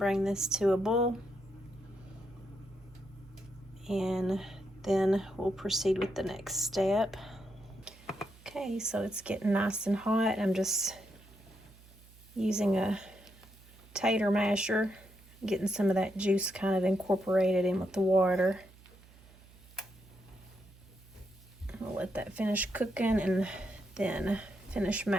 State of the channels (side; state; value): right; noise; hum, 24 dB below the sound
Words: this to a boil, and then we'll proceed with the next step. Okay, so it's getting nice and hot. I'm just using a tater masher, getting some of that juice kind of incorporated in with the water. I'll let that finish cooking and then finish